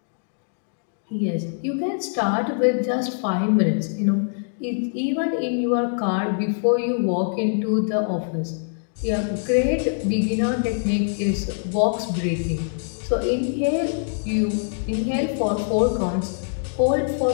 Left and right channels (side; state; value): right; silent; digital silence